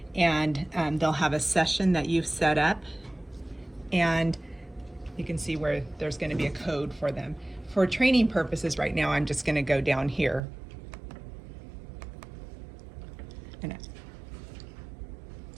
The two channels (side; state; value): left; drops out; at 10.4 s